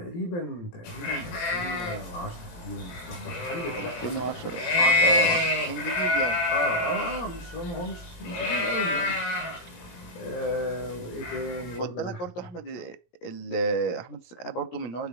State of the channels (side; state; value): right; late; 18 ms